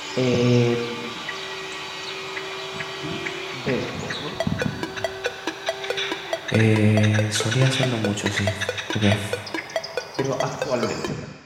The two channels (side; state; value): both; identical; correlation 1.00